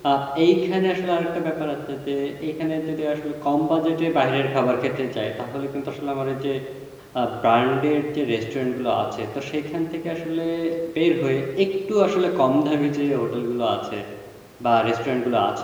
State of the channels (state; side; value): identical; both; correlation 1.00